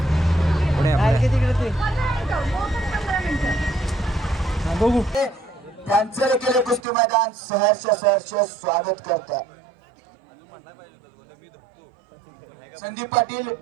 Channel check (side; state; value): left; drops out; at 6.8 s